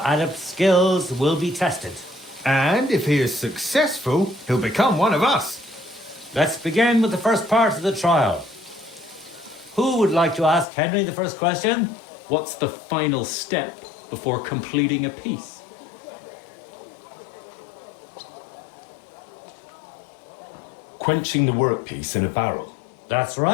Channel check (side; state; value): right; drops out; at 10.7 s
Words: adept skills will be tested. And if he is successful, he'll become one of us. Let's begin with the first part of the trial. Who would like to ask Henry the first question? What's the final step before completing a piece? Quenching the workpiece in a barrel. That's